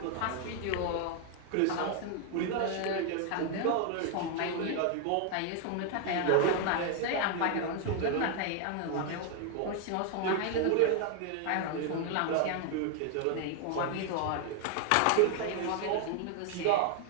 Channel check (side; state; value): both; different; correlation 0.00